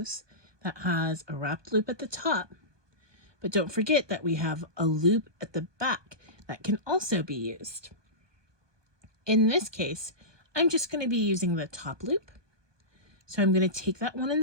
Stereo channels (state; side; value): late; left; 1.2 ms